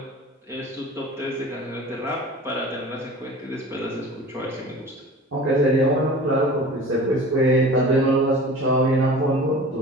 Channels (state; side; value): normal; both; correlation 0.40